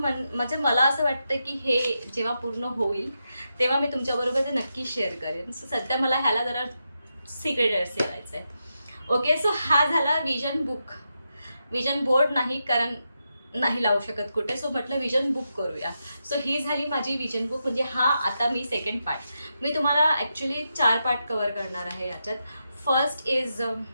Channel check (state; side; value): inverted; both; correlation -0.86